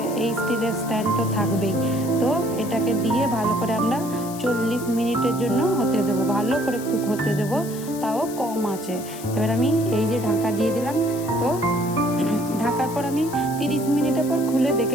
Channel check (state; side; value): noise; left; hiss, 14 dB below the sound